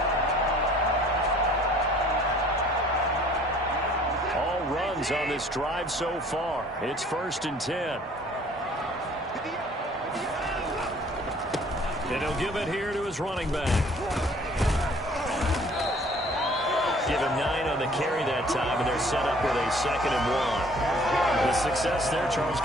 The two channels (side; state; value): both; normal; correlation 0.55